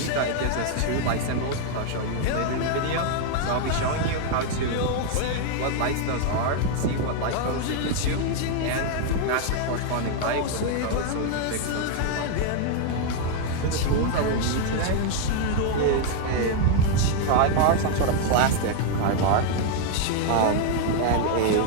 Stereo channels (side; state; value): both; different; correlation 0.00